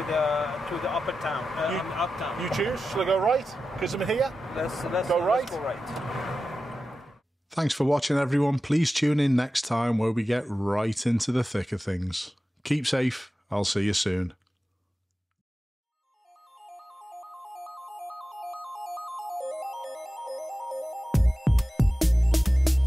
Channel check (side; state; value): both; normal; correlation 0.93